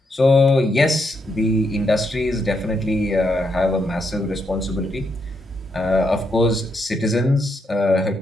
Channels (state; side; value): normal; both; correlation 0.79